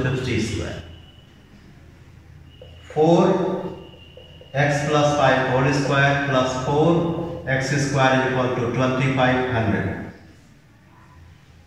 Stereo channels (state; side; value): identical; both; correlation 1.00